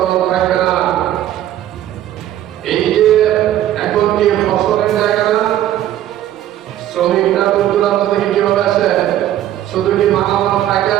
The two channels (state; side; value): quieter; left; 12.4 dB